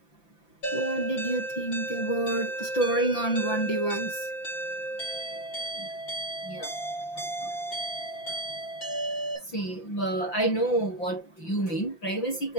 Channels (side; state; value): right; late; 5.8 ms